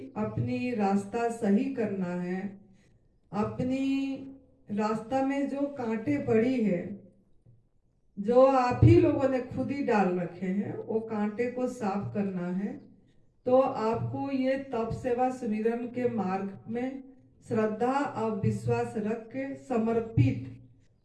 अपनी रास्ता सही करना है, अपनी रास्ता में जो कांटे पड़ी है, जो आप ही लोगों ने खुद ही डाल रखे हैं, वो कांटे को साफ करना है, तो आपको ये तप सेवा सुमिरन के मार्ग में श्रद्धा और विश्वास रख के समर्पित,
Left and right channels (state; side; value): identical; both; correlation 1.00